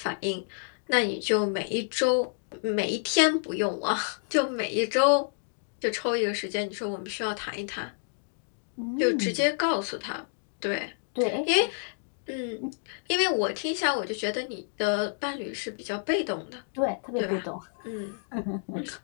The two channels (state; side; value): silent; right; digital silence